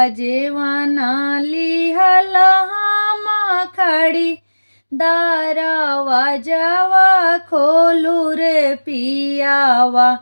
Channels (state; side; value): inverted; both; correlation -1.00